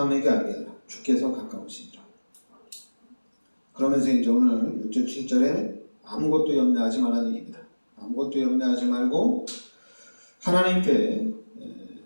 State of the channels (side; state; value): both; inverted; correlation -1.00